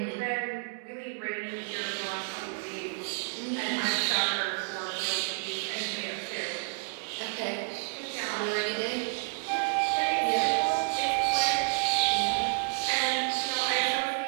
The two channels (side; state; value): left; silent; digital silence